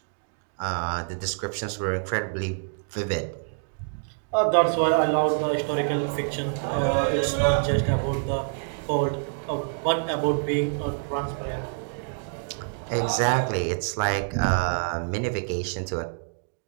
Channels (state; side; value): silent; left; digital silence